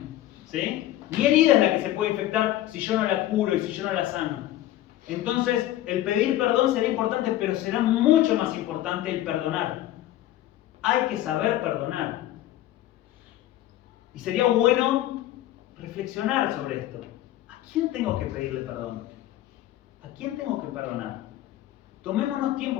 ¿Sí? Mi herida es la que se puede infectar si yo no la curo y si yo no la sano. Entonces, el pedir perdón será importante, pero será mucho más importante el perdonar. Hay que saber perdonar. Y sería bueno reflexionar sobre esto. ¿A quién tengo que pedirle perdón? ¿A quién tengo que perdonar? Tomémonos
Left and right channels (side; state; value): right; quieter; 14.1 dB